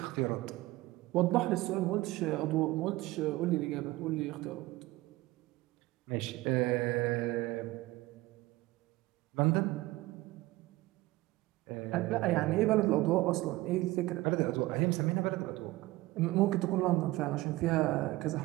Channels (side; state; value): left; quieter; 19.0 dB